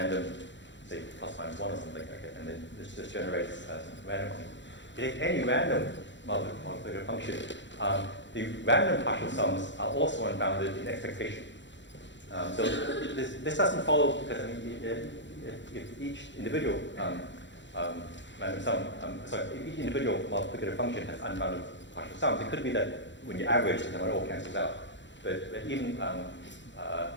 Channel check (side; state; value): right; late; 0.53 ms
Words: say plus minus 1 or something, okay, and then this generates some random function. You take any random multiplicative function, the random partial sums are also unbounded in expectation. This doesn't follow because if each individual random sum, each individual multiplicative function has unbounded partial sums. It could be that when you average, it all cancels out. But even